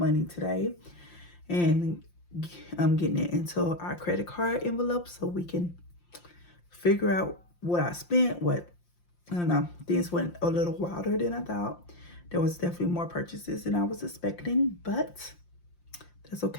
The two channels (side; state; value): right; late; 5.7 ms